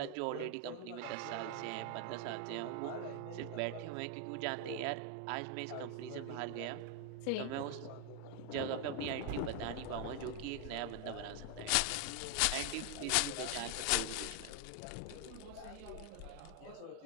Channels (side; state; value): both; different; correlation 0.01